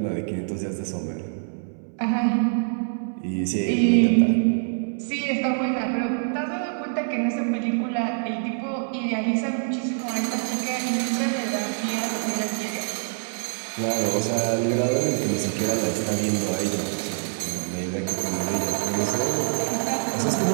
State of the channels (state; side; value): silent; left; 62 dB below the other